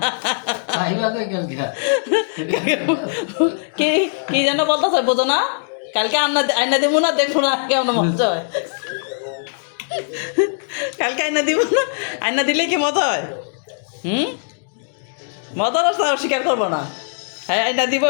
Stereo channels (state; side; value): silent; right; digital silence